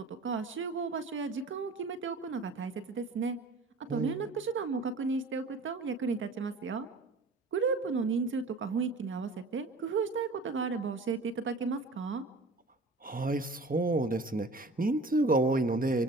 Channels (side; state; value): left; quieter; 3.2 dB